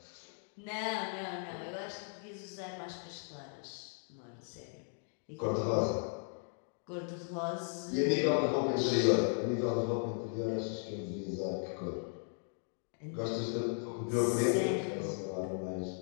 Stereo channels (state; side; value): silent; right; 53 dB below the other